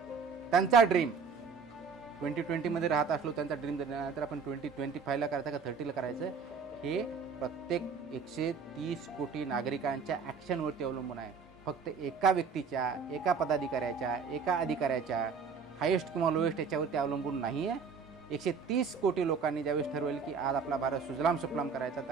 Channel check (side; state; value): left; quieter; 5.5 dB